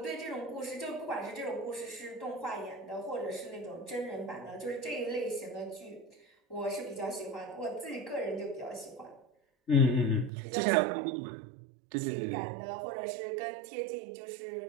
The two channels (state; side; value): drops out; left; at 10.3 s